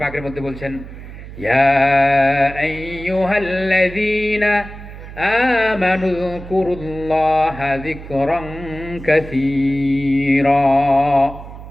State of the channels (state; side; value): noise; right; hum, 14 dB below the sound